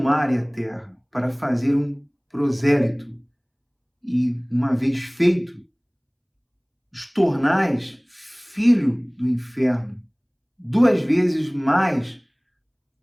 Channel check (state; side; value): identical; both; correlation 1.00